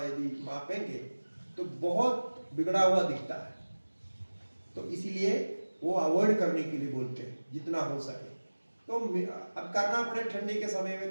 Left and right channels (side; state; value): both; inverted; correlation -1.00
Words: यदि मापेंगे तो बहुत बिगड़ा हुआ दिखता है। तो इसीलिए वो अवॉइड करने के लिए बोलते हैं जितना हो सके। तो अब करना पड़े, ठंडी के समय में